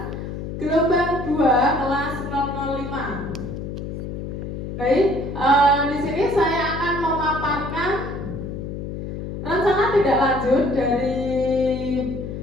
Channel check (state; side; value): noise; left; hum, 7 dB below the sound